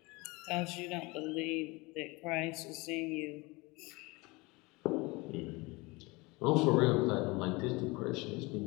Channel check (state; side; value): quieter; right; 24.5 dB